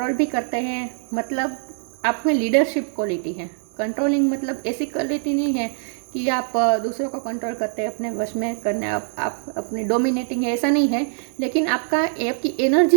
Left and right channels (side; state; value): left; silent; 58 dB below the other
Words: भी करते हैं, मतलब आप में लीडरशिप क्वालिटी है। कंट्रोलिंग मतलब ऐसी क्वालिटी नहीं है कि आप दूसरों को कंट्रोल करते हैं, अपने वश में करने आप अपनी डोमिनेटिंग है, ऐसा नहीं है। लेकिन आपकी